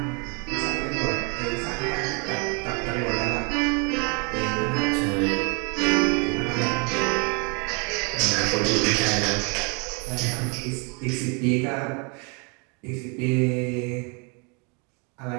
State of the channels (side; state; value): left; quieter; 33.9 dB